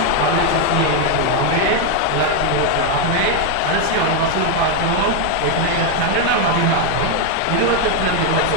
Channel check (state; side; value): different; both; correlation 0.01